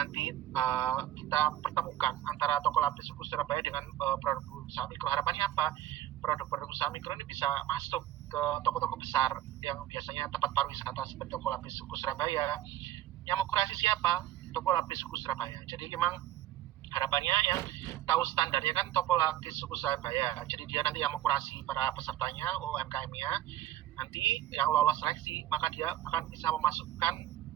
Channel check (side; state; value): left; quieter; 13.0 dB